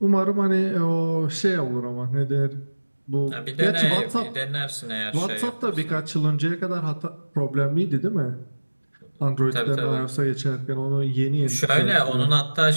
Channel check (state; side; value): inverted; both; correlation -1.00